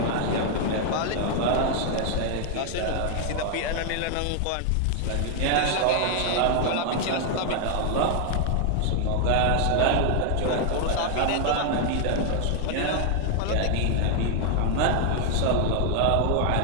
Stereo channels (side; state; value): both; different; correlation 0.00